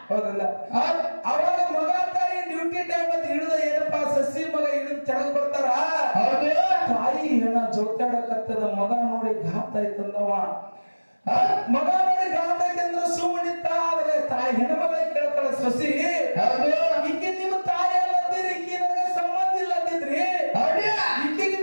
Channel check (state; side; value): inverted; both; correlation -1.00